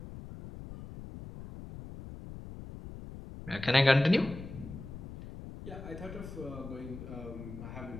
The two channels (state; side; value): noise; left; rumble, 12 dB below the sound